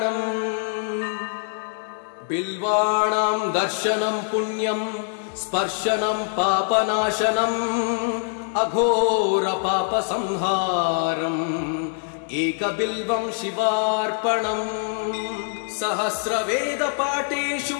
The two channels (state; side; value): silent; right; digital silence